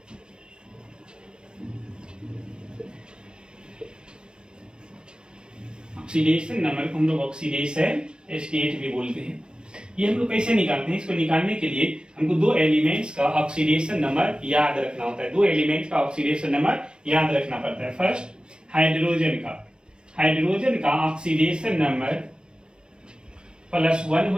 ऑक्सीडेशन नंबर को हम लोग ऑक्सीडेशन स्टेट भी बोलते हैं। ये हम लोग कैसे निकालते हैं? इसको निकालने के लिए हमको दो एलिमेंट्स का ऑक्सीडेशन नंबर याद रखना होता है। दो एलिमेंट्स का ऑक्सीडेशन नंबर याद रखना पड़ता है। फर्स्ट हाइड्रोजन का ऑक्सीडेशन नंबर +1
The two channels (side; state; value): left; late; 0.053 ms